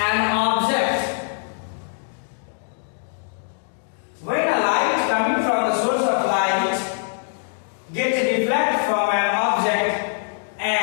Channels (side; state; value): right; silent; digital silence